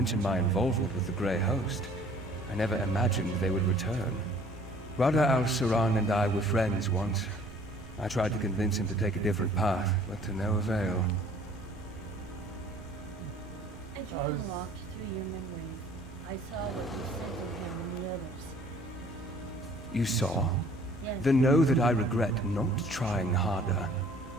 my involvement with the Grey Host. I never imagined they would return. Rada al-Saran and I were friends once. I tried to convince him to take a different path, but to no avail. I tried to walk through your memories. I saw what you said to him and the others. You saw? Yes. Then know that I regret not trying harder.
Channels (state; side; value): normal; both; correlation 0.54